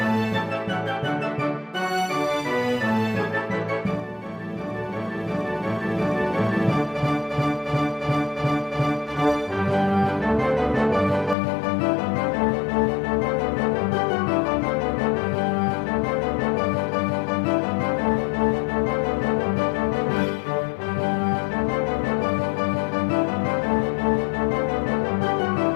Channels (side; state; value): right; drops out; at 11.4 s